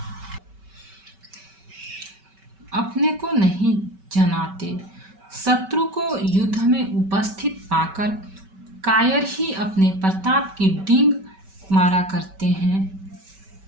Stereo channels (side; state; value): left; late; 5.2 ms